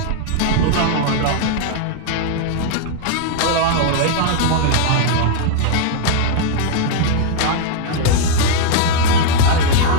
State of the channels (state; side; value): different; both; correlation 0.00